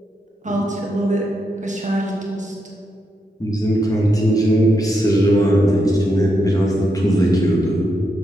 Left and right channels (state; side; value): normal; both; correlation 0.82